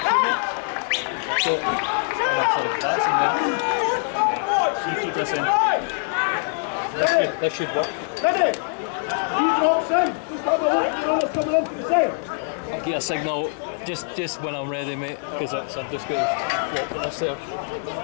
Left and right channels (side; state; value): right; silent; digital silence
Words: You keep this in. This should work. Ready? He drops in. Just have a look. You know what's coming in for the side. I'll get a signal just when I'm ready, mate, because I'm just going to flip this there.